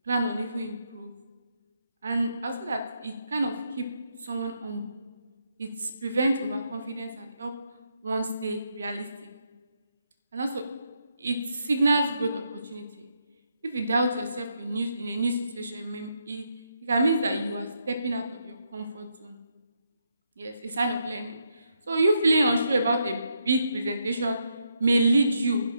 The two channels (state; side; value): inverted; both; correlation -0.79